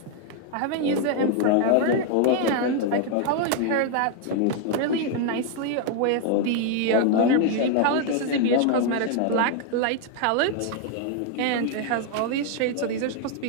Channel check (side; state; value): both; different; correlation 0.00